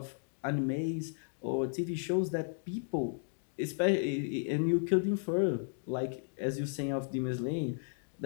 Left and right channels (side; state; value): right; silent; digital silence